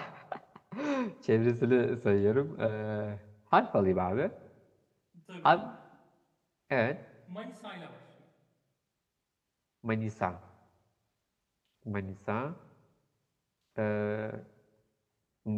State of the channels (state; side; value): identical; both; correlation 1.00